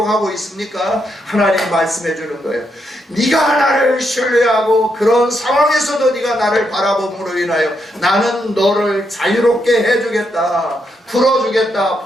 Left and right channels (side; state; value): both; normal; correlation 0.80